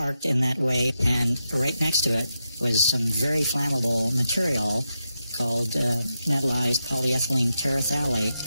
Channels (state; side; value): inverted; both; correlation -0.86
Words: in that way, and right next to it was some very flammable material called metallized polyethylene